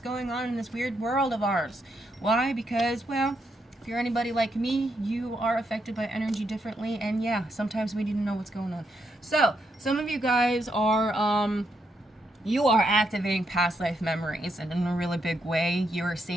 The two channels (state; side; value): normal; both; correlation 0.80